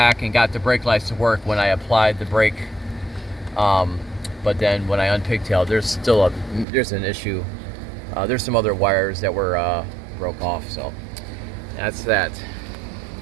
and got the brake lights to work when I applied the brake. But then when I unpigtailed, there's an issue. There's some other wires that were broke off, so that's that.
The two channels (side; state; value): left; drops out; at 6.7 s